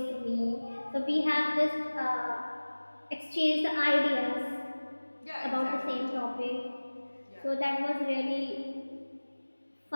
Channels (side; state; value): both; inverted; correlation -1.00